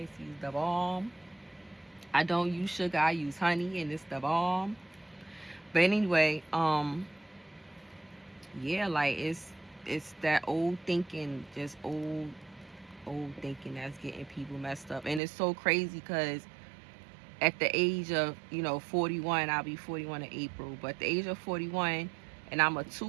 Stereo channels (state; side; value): drops out; left; at 15.2 s